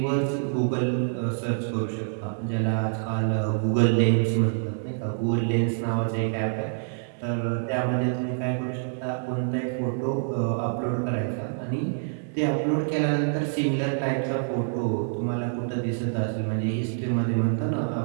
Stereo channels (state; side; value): silent; left; 61 dB below the other